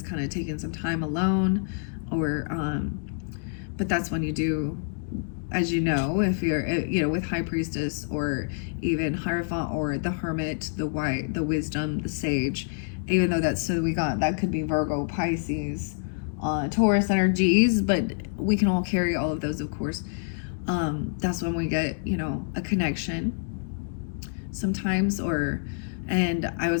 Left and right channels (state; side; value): silent; right; digital silence